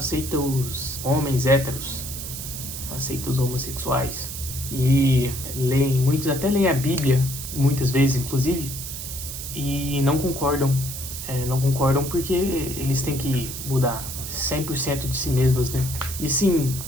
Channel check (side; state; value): right; noise; hiss, 8 dB below the sound